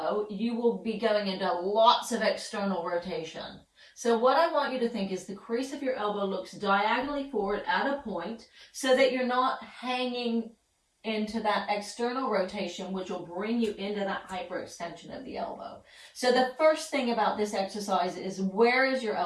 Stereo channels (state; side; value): identical; both; correlation 1.00